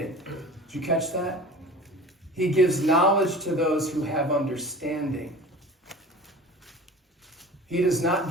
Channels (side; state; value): both; normal; correlation 0.39